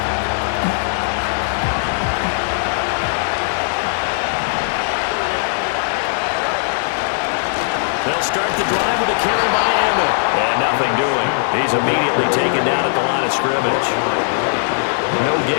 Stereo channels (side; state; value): right; silent; digital silence